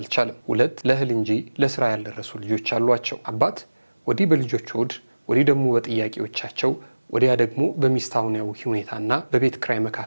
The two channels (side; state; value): both; inverted; correlation -1.00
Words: 2 ለእህል እንጂ ለስራ ያልደረሱ ልጆች አሏቸው። አባት ወዲህ በልጆች ሆድ፣ ወዲህ ደግሞ በጥያቄዎቻቸው፣ ወዲያ ደግሞ በሚስታውያዊ ሁኔታና በቤት ክራይ